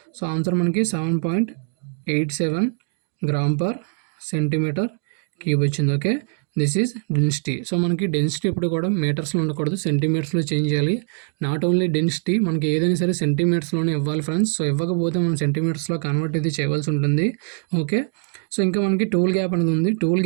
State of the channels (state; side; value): silent; left; 58 dB below the other